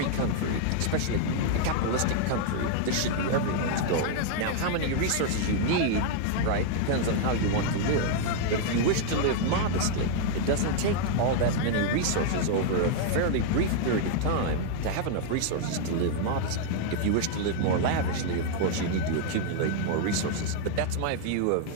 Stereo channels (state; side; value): different; both; correlation 0.00